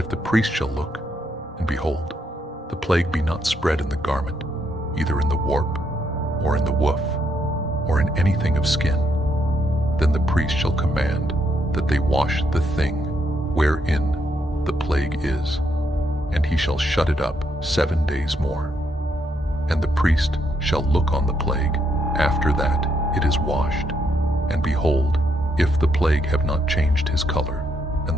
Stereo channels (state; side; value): normal; both; correlation 0.76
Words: the priest shall look, and behold, the plague be not spread in the garment, either in the warp, or in the woof, or in anything of skin, then the priest shall command that they wash the thing wherein the plague is, and he shall shut it up 7 days more. And the priest shall look on the plague after that it is washed, and behold, if the plague have not changed his color, and